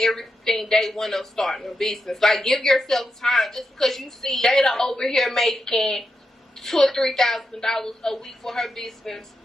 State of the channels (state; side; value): normal; both; correlation 0.86